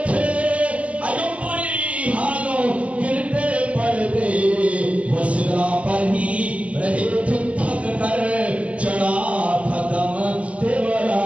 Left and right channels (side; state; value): left; late; 0.064 ms